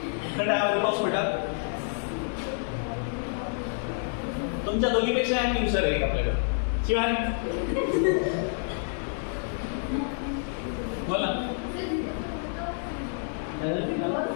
हवेमध्ये पाऊस पडला तुमच्या दोघीपेक्षा ऍक्टिव्ह सर आहे आपल्याकडे शिवाय बोला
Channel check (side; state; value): right; silent; digital silence